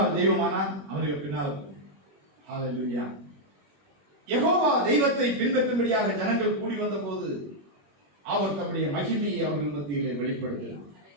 தெய்வமானால் அவனுக்கு பின்னால். ஹல்லேலூயா. யெகோவா தெய்வத்தை பின்பற்றும்படியாக ஜனங்கள் கூடி வந்த போது அவர் தம்முடைய மகிமையை அவர்கள் மத்தியிலே வெளிப்படுத்தினார்.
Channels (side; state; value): left; late; 21 ms